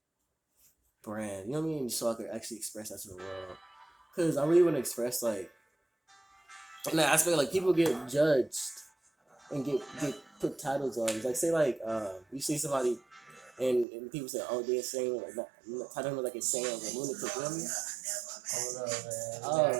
brand. You know what I mean? So I could actually express that to the world. Cause I really want to express like. In that aspect, like people get judged and get put titles on. Like say like you see somebody and people say, oh, they're saying like not, I don't know, like it's saying like a lunatic, you know what I mean? Hold up, man. Oh,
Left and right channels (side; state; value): left; drops out; at 13.9 s